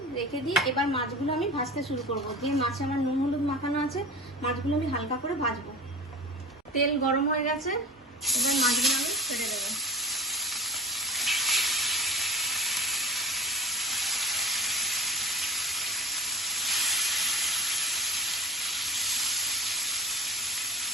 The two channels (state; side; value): normal; both; correlation 0.36